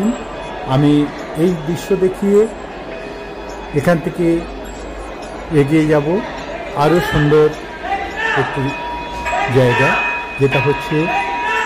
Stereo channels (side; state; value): both; identical; correlation 1.00